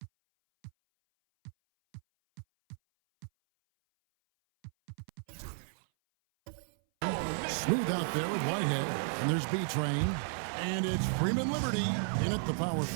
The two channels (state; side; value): silent; left; 56 dB below the other